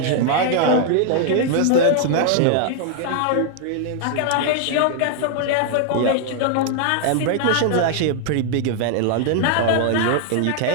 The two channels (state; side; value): different; both; correlation 0.00